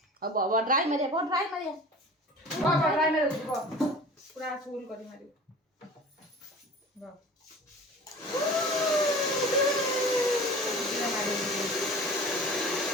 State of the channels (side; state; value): both; normal; correlation 0.40